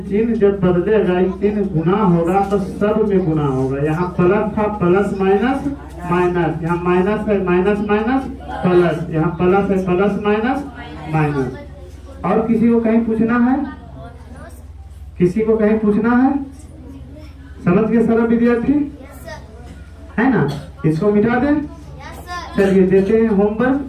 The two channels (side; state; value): both; identical; correlation 1.00